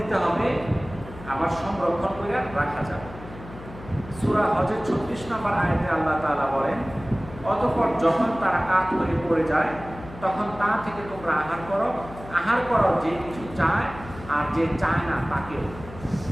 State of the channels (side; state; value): left; noise; hum, 15 dB below the sound